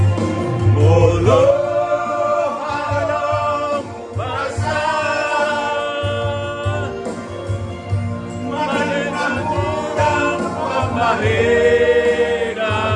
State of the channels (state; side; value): identical; both; correlation 1.00